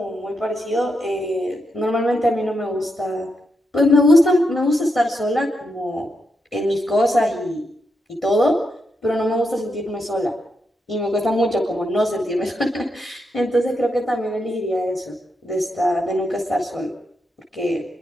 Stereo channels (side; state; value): both; normal; correlation 0.83